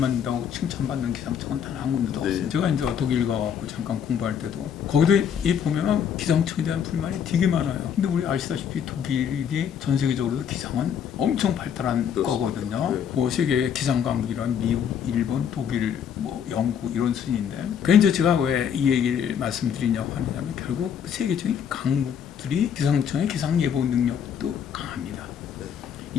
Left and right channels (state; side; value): quieter; right; 8.1 dB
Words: 칭찬받는 기상청은 단 한 군데도 네. 없어요. 제가 이제 독일 가고 잠깐 공부할 때도 거기도 이 보면은 기상청에 대한 불만이 되게 많아요. 근데 우리 아시다시피 독일이 전 세계적으로 기상은 엄청 발달한 그렇습니다. 거거든요. 네. 뭐 세계 기상 강국이란 미국, 일본, 독일, 뭐 영국 이런 순인데. 그래서 제가 왜 이 얘기를 말씀드리냐고 하느냐면 결국 세계적인 강국들이 기상청의 기상 예보 능력도 강합니다. 네.